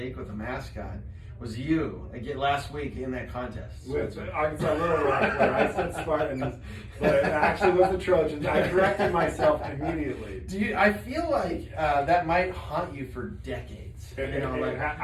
with a mascot was you again last week in that contest. With Arkansas Little Rock, where I said Spartans, but it actually was the Trojans. I corrected myself immediately. I feel like that might haunt you for decades.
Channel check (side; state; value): both; identical; correlation 1.00